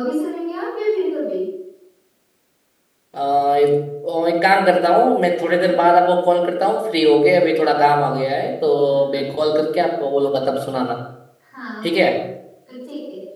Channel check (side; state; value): both; identical; correlation 1.00